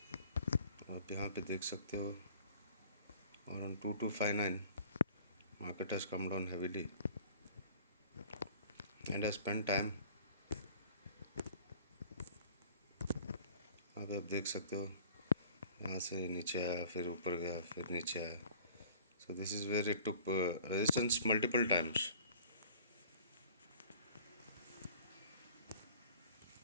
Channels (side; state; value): both; inverted; correlation -0.49